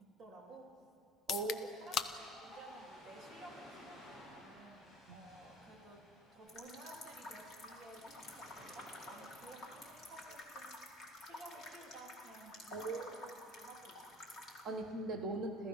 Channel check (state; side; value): normal; both; correlation 0.45